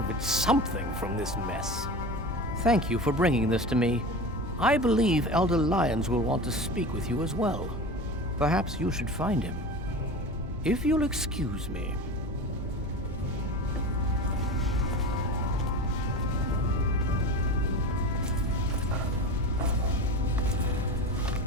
something from this mess. Thank you for bringing this to me. I believe Elder Lyons will want to speak with you as well. Perhaps you should find him. If you'll excuse me.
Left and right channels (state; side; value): normal; both; correlation 0.30